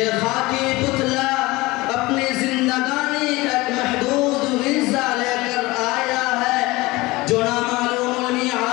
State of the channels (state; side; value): quieter; right; 21.1 dB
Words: خاکی پتلا اپنی زندگانی کا ایک محدود حصہ لے کر آیا ہے جو نامعلوم